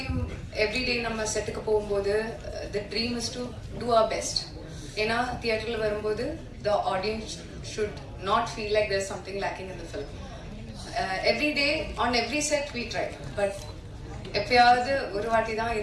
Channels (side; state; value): both; identical; correlation 1.00